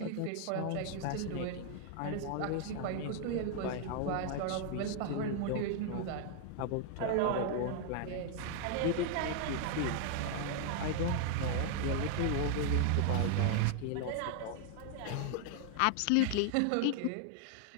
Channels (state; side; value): different; both; correlation 0.00